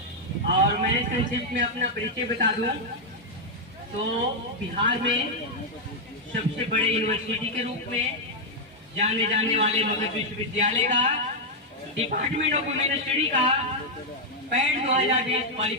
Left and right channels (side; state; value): both; normal; correlation -0.01